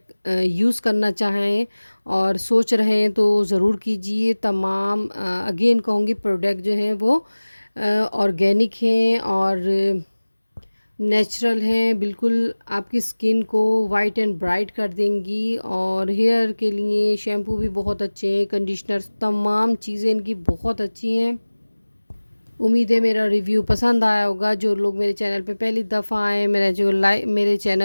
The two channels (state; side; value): inverted; both; correlation -1.00